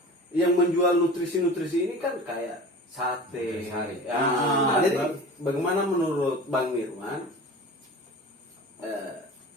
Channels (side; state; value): both; normal; correlation 0.37